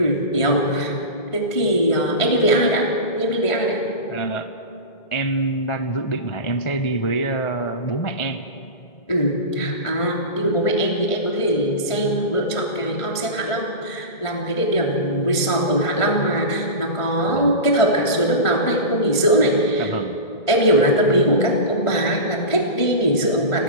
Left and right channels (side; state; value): right; late; 1.5 ms